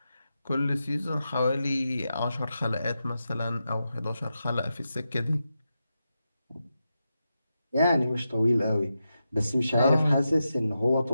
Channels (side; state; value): both; inverted; correlation -0.89